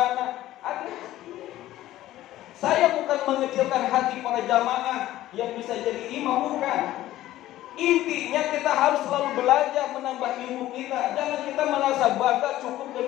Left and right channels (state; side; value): quieter; right; 14.7 dB